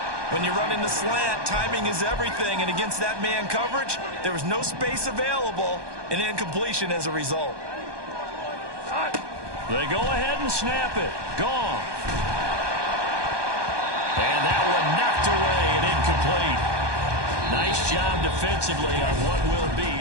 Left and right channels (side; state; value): left; late; 1.2 ms